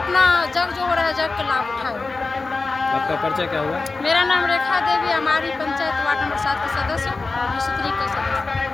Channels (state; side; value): quieter; right; 3.8 dB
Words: जग जो हो रहा है जग का लाभ उठाए। आपका परिचय क्या हुआ? मेरा नाम रेखा देवी, हमारी पंचायत वार्ड नंबर 7 के सदस्य स्त्री के